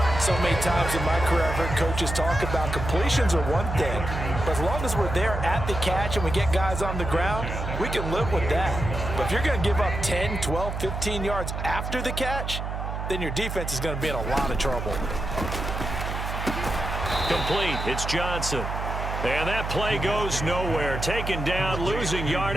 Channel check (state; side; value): noise; right; hum, 4 dB below the sound